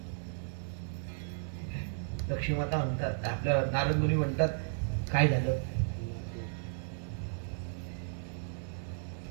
लक्ष्मी माता म्हणतात, आपल्या नारद मुनी म्हणतात काय झालं?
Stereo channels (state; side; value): silent; left; digital silence